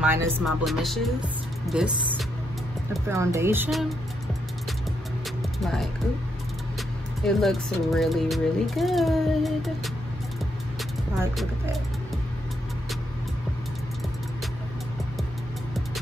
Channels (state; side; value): normal; both; correlation 0.79